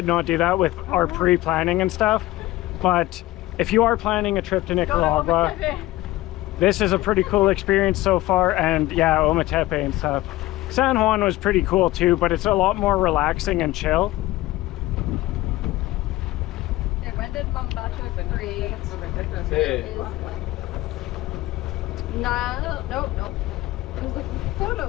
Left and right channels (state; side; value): quieter; right; 17.6 dB